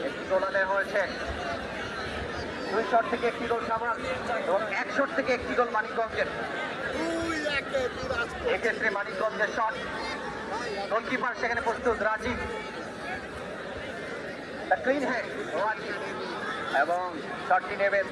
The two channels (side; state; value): both; identical; correlation 1.00